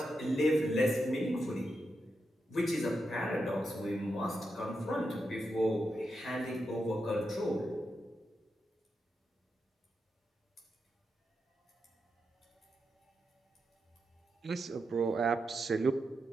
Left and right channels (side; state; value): both; normal; correlation 0.86